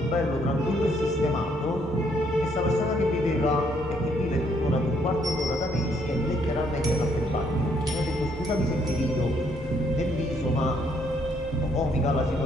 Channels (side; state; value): both; normal; correlation 0.69